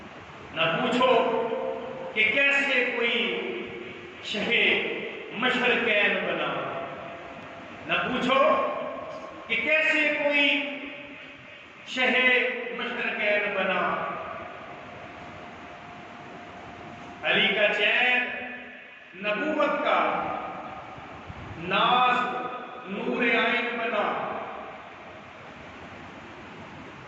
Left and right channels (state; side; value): identical; both; correlation 1.00